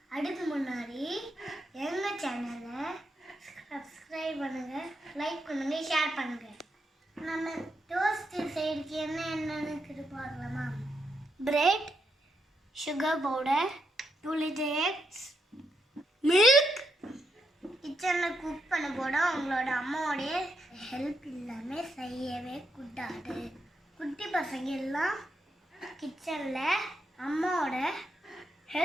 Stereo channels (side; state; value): both; normal; correlation 0.82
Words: அதுக்கு முன்னாடி எங்கள் சேனலை சப்ஸ்கிரைப் பண்ணுங்கள், லைக் பண்ணுங்கள், ஷேர் பண்ணுங்கள். நம்ம டோஸ்ட் செய்யறதுக்கு என்னென்னு பார்க்கலாமா? Bread, sugar powder, 2 liter eggs, milk. கிச்சனில் குக் பண்ண போட உங்களோட அம்மாவோடைய ஹெல்ப் இல்லாமல் செய்யவே கூடாது. குட்டி பசங்க எல்லாம் கிச்சனில் அம்மாவோட